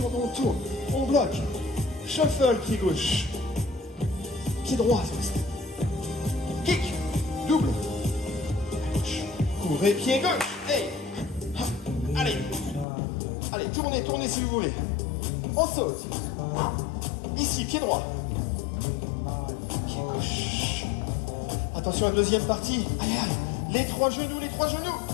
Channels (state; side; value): drops out; right; at 12.9 s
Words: on tourne. On bloque. Shuffle, pied gauche. Pied droit, kick, double. À gauche. Courez, pied gauche. Hey. Allez. Allez, tournez, tournez si vous voulez. On saute. Ici, pied droit. Pied gauche. Attention à la deuxième partie. Allez, allez. Les trois genoux, les trois genoux.